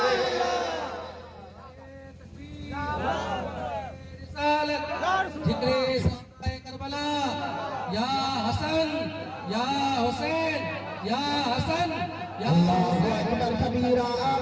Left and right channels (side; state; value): both; identical; correlation 1.00